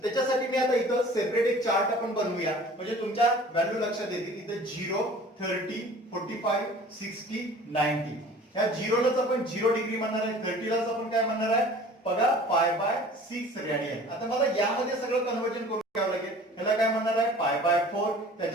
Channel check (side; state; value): both; normal; correlation 0.46